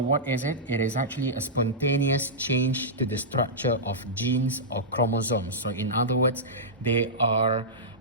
is it? It is actually a spontaneous change to the structure of genes or chromosomes. So in other words, they are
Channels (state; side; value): normal; both; correlation -0.13